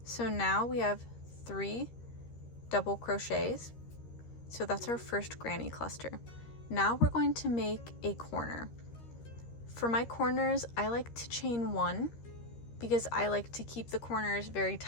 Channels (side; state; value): right; late; 13 ms